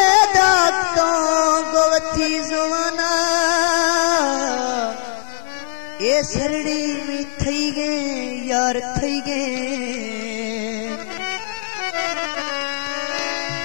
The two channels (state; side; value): silent; right; digital silence